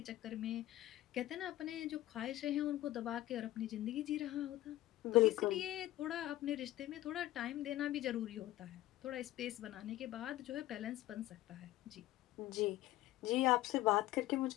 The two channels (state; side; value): quieter; right; 15.7 dB